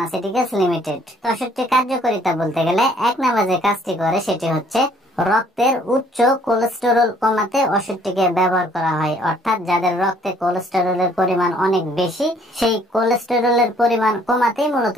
লিমিটেড। তো ওষুধটির কার্যকারিতা বলতে গেলে 1 নাম্বার যে কাজটি করে সেটি হচ্ছে রক্তের উচ্চ কোলেস্টেরল কমাতে ওষুধটিকে ব্যবহার করা হয়। অর্থাৎ যাদের রক্তে কোলেস্টেরলের পরিমাণ অনেক বেশি, সেই কোলেস্টেরলের পরিমাণ কমাতেই মূলত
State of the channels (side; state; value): both; normal; correlation 0.61